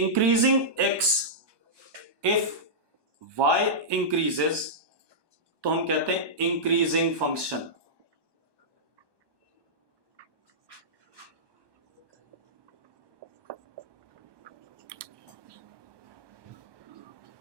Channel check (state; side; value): late; left; 1.2 ms